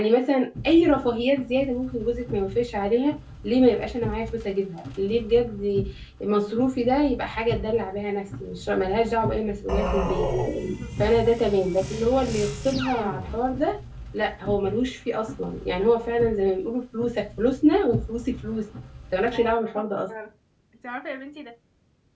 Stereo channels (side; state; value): both; identical; correlation 1.00